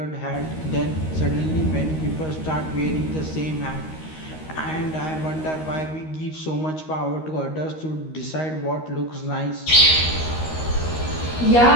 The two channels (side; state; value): right; late; 13 ms